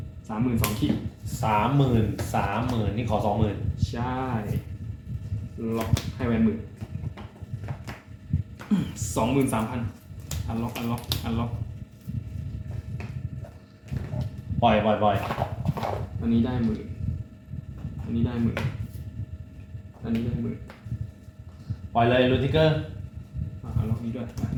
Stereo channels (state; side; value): identical; both; correlation 1.00